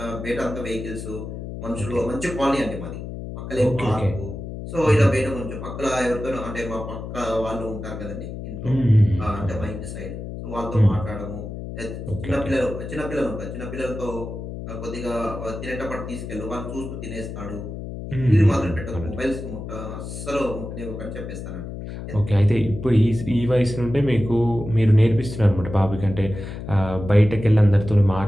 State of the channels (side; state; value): left; noise; hum, 8 dB below the sound